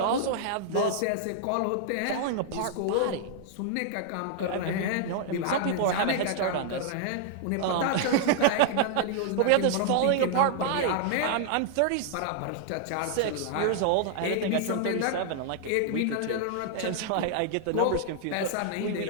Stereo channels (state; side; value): different; both; correlation -0.01